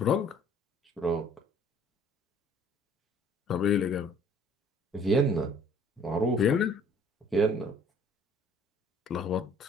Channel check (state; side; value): normal; both; correlation 0.56